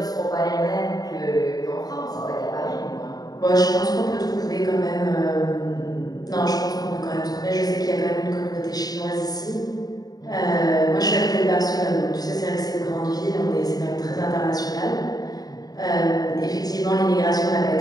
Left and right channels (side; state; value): right; late; 0.18 ms